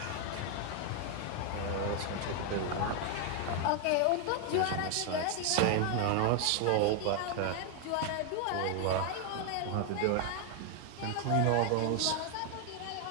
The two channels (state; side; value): different; both; correlation 0.01